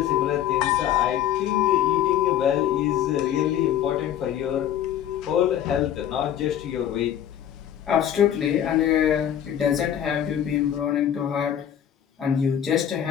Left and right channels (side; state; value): right; quieter; 10.4 dB